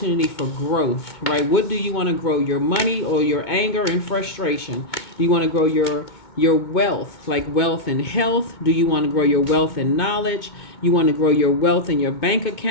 for growth, right? What do you want to grow? Your money or your anger and frustration? Do you want to grow your wealth, like wealth and health? Do you want to grow your wealth and knowledge? You want to grow your wealth in your bank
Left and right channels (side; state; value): right; late; 2.2 ms